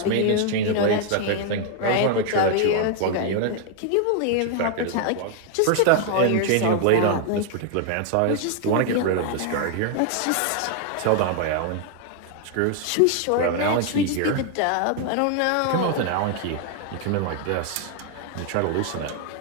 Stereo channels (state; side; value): different; both; correlation 0.00